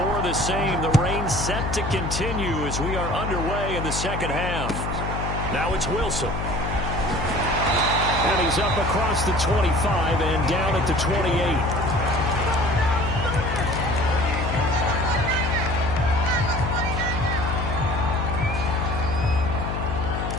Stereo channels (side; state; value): left; noise; hum, 4 dB below the sound